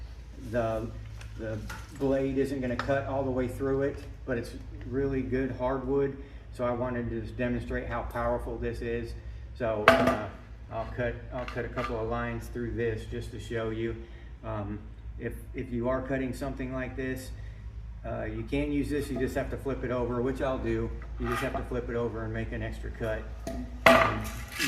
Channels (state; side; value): identical; both; correlation 1.00